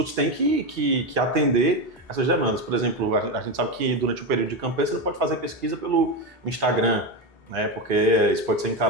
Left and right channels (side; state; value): both; normal; correlation 0.14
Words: têm que atender essas demandas. Por exemplo, a gente sabe que durante o período de campanha você não pode fazer pesquisa pelo Instagram, né, porque isso pode ser